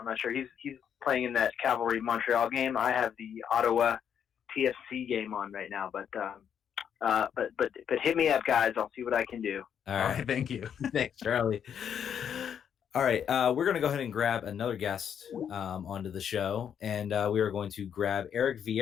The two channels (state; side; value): quieter; right; 8.4 dB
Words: not sure. He's playing in that Cavalry Montreal game. I have the Ottawa TFC game on right now, but hit me up, guys. I'll see what I can do. All right. Thank you. Thanks, Charlie. All right, we're going to go ahead and grab another guest onto the show, and we are going to grab Eric